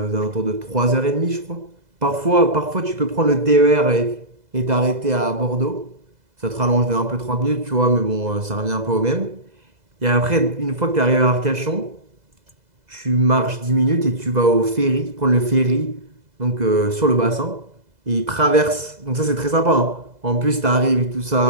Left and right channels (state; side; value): late; left; 2.0 ms